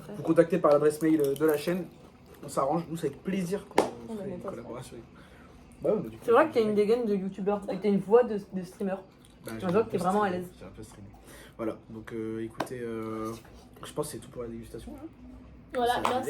Vous contactez par l'adresse mail de la chaîne. On s'arrange. Nous, c'est avec plaisir qu'on On fait met une ça. collaboration. Bah, ouais, on a du coup- C'est vrai que t'as une dégaine de youtubeur et t'as une voix de streamer. Bah, On voit que t'es vraiment à l'aise. J'ai un peu streamé. Voilà, donc écoutez, je pense que c'est tout pour la dégustation. Hein. Voilà, Ça va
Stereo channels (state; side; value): identical; both; correlation 1.00